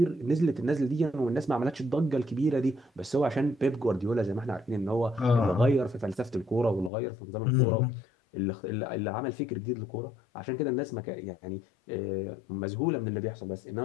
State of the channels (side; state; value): right; drops out; at 6.9 s